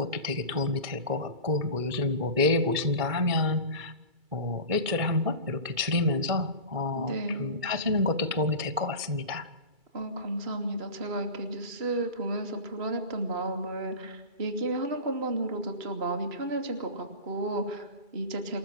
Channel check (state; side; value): late; left; 2.3 ms